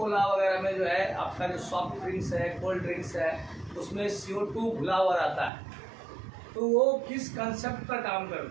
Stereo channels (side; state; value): left; drops out; at 5.5 s